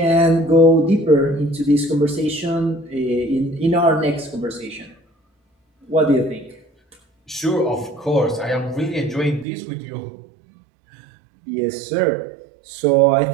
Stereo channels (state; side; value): drops out; left; at 9.5 s